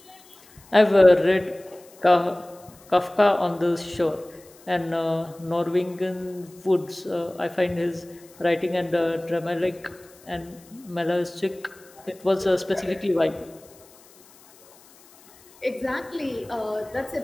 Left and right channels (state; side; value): noise; left; hiss, 26 dB below the sound